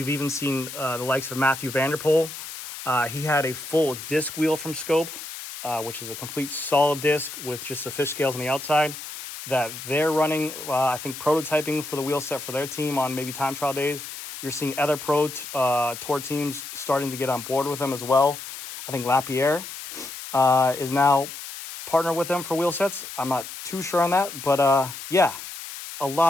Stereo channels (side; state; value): left; noise; hiss, 10 dB below the sound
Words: even seen the likes of Matthew Vanderpool. He had a full disc wheel from Scope, which is a complete solid disc with just the fish scales on the outside that they're running, I think, prototyping for the wheel set for their team on maybe time trial days. You're seeing other pro tour teams starting to get on board with them as well. I think Lapierre is now partnered with them for wheel sets. I'm not too sure on that, but yeah, a